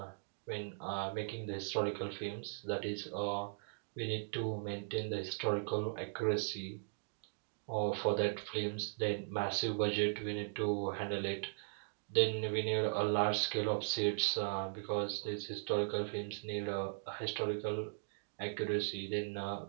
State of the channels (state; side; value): silent; left; digital silence